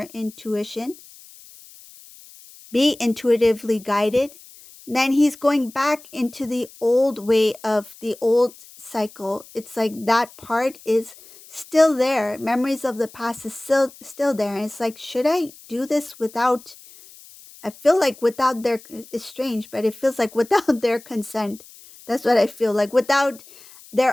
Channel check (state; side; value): noise; left; hiss, 22 dB below the sound